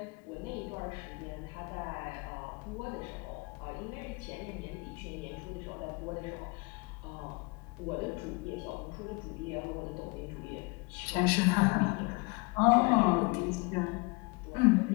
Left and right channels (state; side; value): quieter; right; 28.2 dB